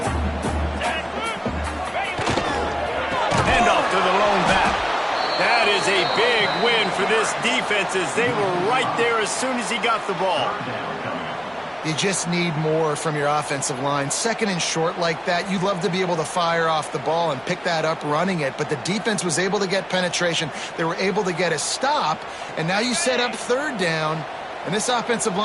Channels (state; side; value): identical; both; correlation 1.00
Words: Handoff to the lone back. That is a big win for this defense as they were right there as soon as he got the ball. You just need more from your offensive line. Second and short like that, you'd love to be able to fire off the ball and pick that up running it, but the defense was able to get penetration. They were able to get a stop, and now you set up third down, and this offensive